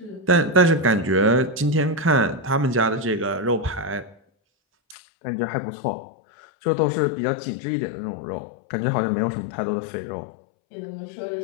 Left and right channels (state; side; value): drops out; right; at 5.0 s